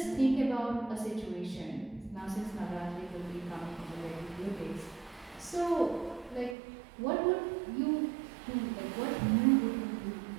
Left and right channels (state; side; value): drops out; left; at 6.6 s